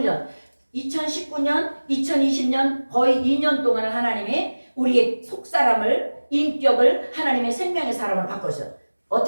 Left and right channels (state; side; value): inverted; both; correlation -1.00